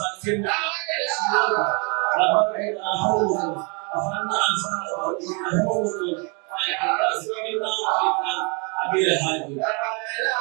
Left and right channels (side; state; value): left; quieter; 33.7 dB